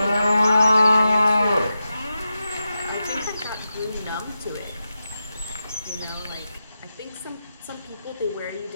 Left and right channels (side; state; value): both; inverted; correlation -0.89